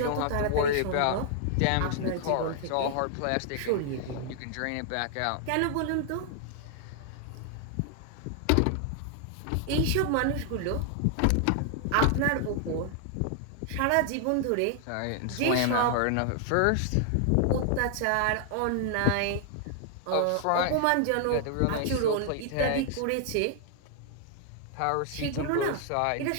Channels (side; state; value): both; different; correlation 0.00